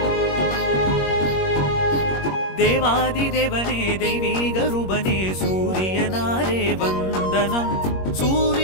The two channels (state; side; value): late; right; 21 ms